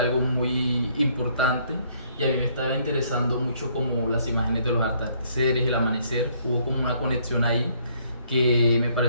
algo muy importante y a mí me estaba interesando mucho como las imágenes de los atardeceres, el amanecer. Hubo como una conexión ahí que me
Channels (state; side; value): inverted; both; correlation -0.66